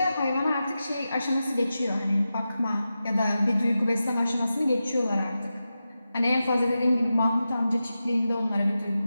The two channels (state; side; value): inverted; both; correlation -0.92